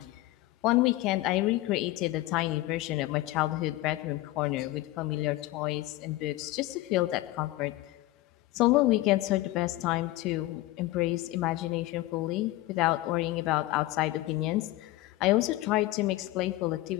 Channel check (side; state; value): right; quieter; 17.4 dB